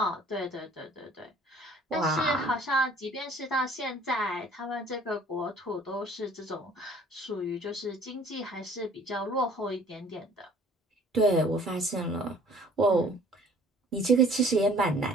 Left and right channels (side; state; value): both; normal; correlation 0.53